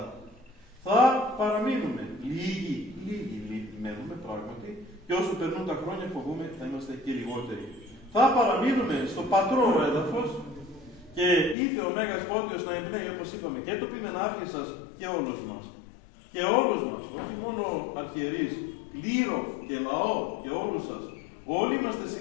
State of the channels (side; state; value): right; drops out; at 11.6 s